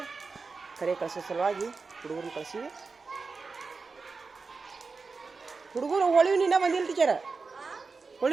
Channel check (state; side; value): quieter; left; 4.4 dB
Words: ಕರೆ ಕಳ್ಸೋ ಸಲುವಾಗಿ ಹುಡುಗರನ್ನ ಕಳಿಸಿವಿ. ಹುಡುಗರು ಹೋಳಿಯೂ ಇನ್ನೂ ಬಂದಿಲ್ಲ ಟೀಚರ.